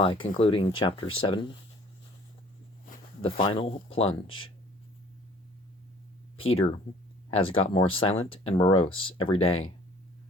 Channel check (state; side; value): normal; both; correlation 0.54